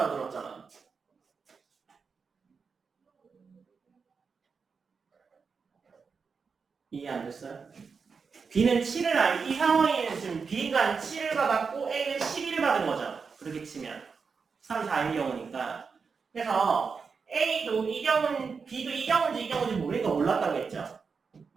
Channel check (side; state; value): left; quieter; 5.3 dB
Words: 이해 안 됐어요? B는 7을 이 상황에는 지금 B가 7을 받았고 A는 12를 받은 거죠. 그렇게 치면 3, 4인 경우니까. 그래서 A도 이 경우는 B도 이 경우인지 모르니까 몰랐다고 했죠.